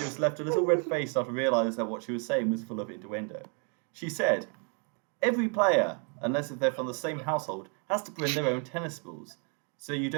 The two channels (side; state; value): left; quieter; 38.6 dB